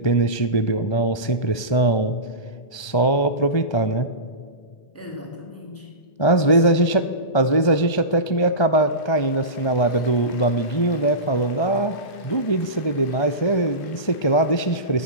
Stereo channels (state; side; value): late; right; 1.3 ms